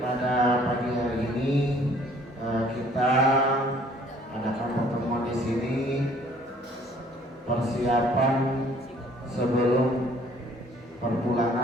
pagi hari ini kita adakan pertemuan di sini persiapan sebelum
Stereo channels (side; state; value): both; normal; correlation 0.57